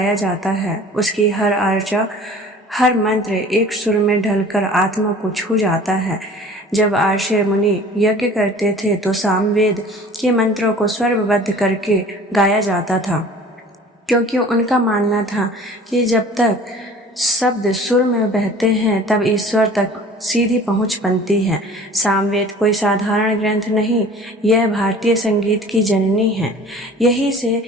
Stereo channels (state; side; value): normal; both; correlation 0.46